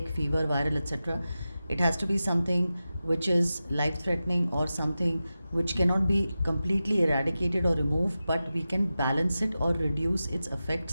fever, viral, etc. It has to be something which is life threatening or something which cannot be completely eradicated or removed, but we can balance it or reduce its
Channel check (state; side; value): inverted; both; correlation -0.93